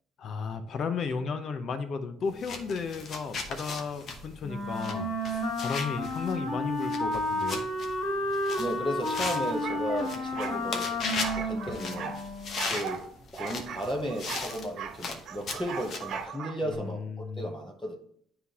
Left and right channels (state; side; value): normal; both; correlation 0.65